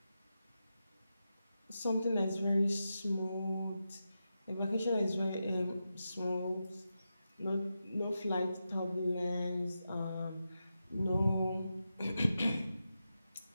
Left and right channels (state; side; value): inverted; both; correlation -0.89